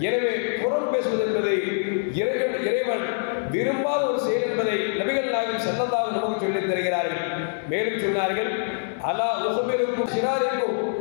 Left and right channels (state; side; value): silent; right; digital silence